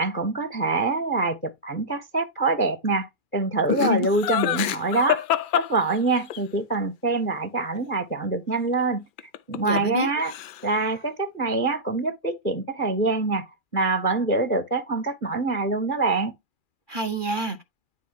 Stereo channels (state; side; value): late; right; 2.4 ms